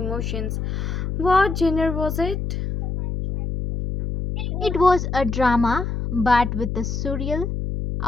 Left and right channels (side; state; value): left; noise; hum, 3 dB below the sound